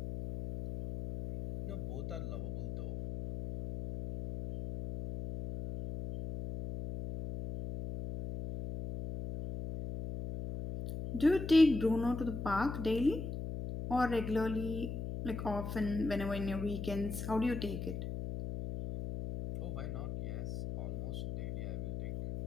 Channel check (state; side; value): noise; left; hum, 5 dB below the sound